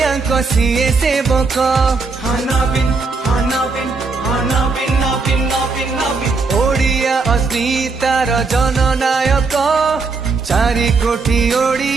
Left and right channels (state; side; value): quieter; left; 4.2 dB